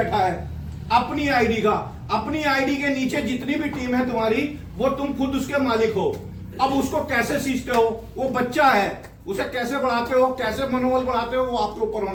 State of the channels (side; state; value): both; identical; correlation 1.00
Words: है अपनी आईडी का। अपनी आईडी के नीचे जितनी भी टीम है तुम्हारी, वो तुम खुद उसके मालिक हो। अब उसको कैसे सीखते हो? वो बच्चा है, उसे कैसे बढ़ाते हो, कैसे मनोबल बढ़ाते हो, वो आपके ऊपर